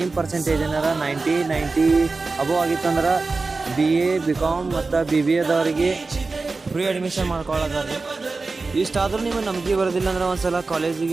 ಪರ್ಸೆಂಟೇಜ್ ಏನಾರ 90 ಅಬೋವ್ ಆಗಿತ್ತಂದ್ರೆ BA BCom ಮತ್ತು BBAದವರಿಗೆ ಫ್ರೀ ಅಡ್ಮಿಷನ್ ಮಾಡ್ಕೊಳ್ಳೋದ್ರಿ. ಇಷ್ಟಾದ್ರೂ ನಿಮಗೆ ನಂಬಿಕೆ ಬರೋದಿಲ್ಲ ಅಂದ್ರೆ ಒಂದ್ಸಲ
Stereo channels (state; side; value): quieter; left; 3.8 dB